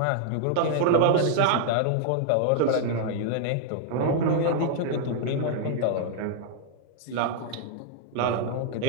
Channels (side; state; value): both; different; correlation -0.01